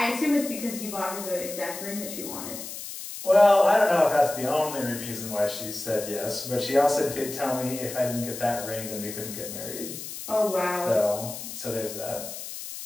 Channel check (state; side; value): noise; left; hiss, 9 dB below the sound